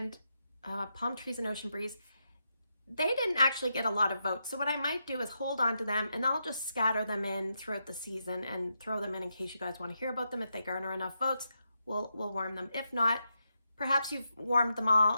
Palm Trees and Ocean Breeze, they didn't actually get a lot of votes. So what I might do is hold on to them and I'll just scatter them in throughout the season and throw them in case you guys want to hear about them. If they garner enough votes, we'll warm them. If not, perhaps you've warmed them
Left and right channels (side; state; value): both; inverted; correlation -0.84